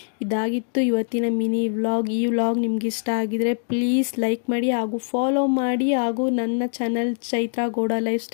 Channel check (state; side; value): silent; right; digital silence